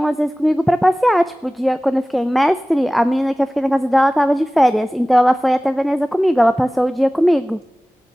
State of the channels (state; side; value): normal; both; correlation 0.98